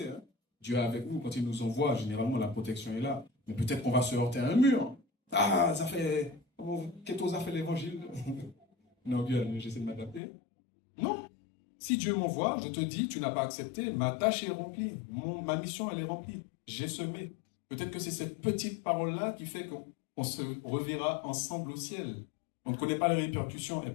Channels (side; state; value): right; drops out; at 10.2 s